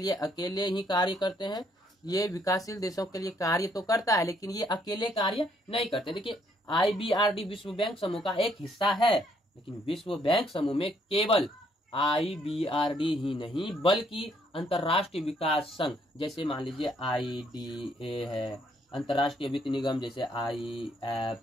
अकेले ही कार्य करते हैं। ये विकासशील देशों के लिए कार्य तो करता है, लेकिन ये अकेले कार्य नहीं करते। देखिए, IBRD विश्व बैंक समूह का एक हिस्सा है, लेकिन विश्व बैंक समूह में केवल IBRD ही नहीं बल्कि अंतर्राष्ट्रीय विकास संघ, जैसे मान लीजिए IDA है, अंतर्राष्ट्रीय वित्त निगम जैसे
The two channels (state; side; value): normal; both; correlation 0.69